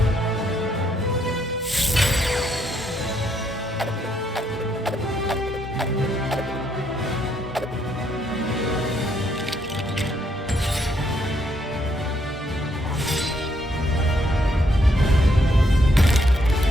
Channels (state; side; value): normal; both; correlation 0.73